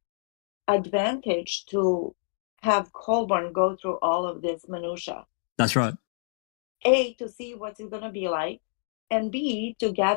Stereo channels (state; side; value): silent; right; digital silence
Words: advantage to have Colborn go through all of this minutia. That's right. A, to see what's it gonna be like, and B, to